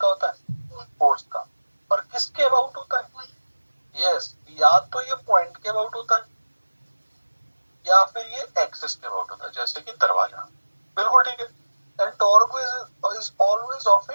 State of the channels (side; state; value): both; inverted; correlation -1.00